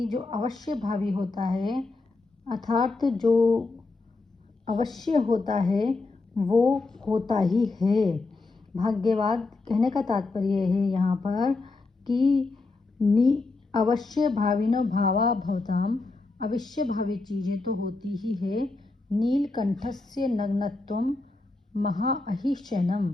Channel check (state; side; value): quieter; right; 3.5 dB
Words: जो अवश्य भावी होता है अर्थात जो अवश्य होता है वो होता ही है। भाग्यवाद कहने का तात्पर्य है यहाँ पर कि अवश्य भाविनो भावा भवताम, अवश्य भावी चीजें तो होती ही है। नीलकंठस्य नग्नत्वम महा अहि शयनम,